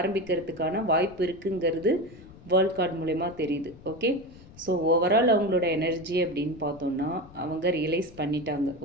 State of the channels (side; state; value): left; noise; rumble, 21 dB below the sound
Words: வாய்ப்பு இருக்குங்கிறது வேர்ல்ட் கார்டு மூலயமா தெரியுது. ஓகே, ஸோ ஓவரால் அவங்களோட எனர்ஜி அப்படின்னு பார்த்தோன்னா, அவங்க ரியலைஸ் பண்ணிட்டாங்க.